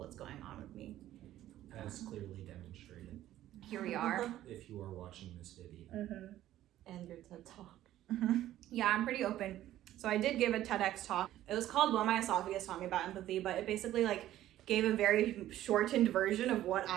going on with me. As clearly demonstrated. Here we are. If you are watching this video. And your TED Talk. Yeah, I'm pretty open. So I did give a TEDx talk. It was called What My Esophagus Taught Me About Empathy, but it basically like gave a very shortened version of what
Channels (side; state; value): left; quieter; 13.5 dB